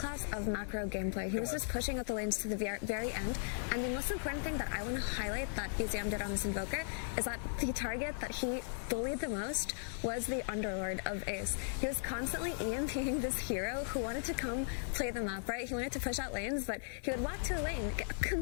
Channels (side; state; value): right; silent; digital silence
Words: of macro gameplay. He was just pushing out the lanes to the very end. And the most important thing that I want to highlight that BZM did on this Invoker is that the target that he bullied the most was the Underlord of Ace. He was constantly EMPing this hero who wanted to come play the map, right? He wanted to push out lanes, but he would walk to a lane